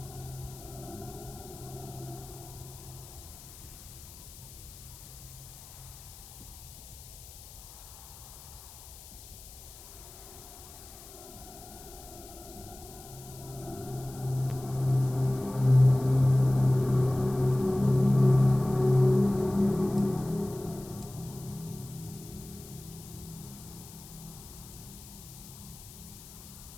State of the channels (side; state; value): left; noise; hiss, 17 dB below the sound